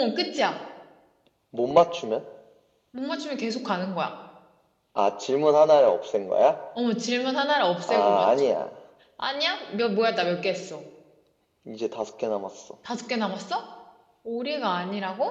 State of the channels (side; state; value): both; identical; correlation 1.00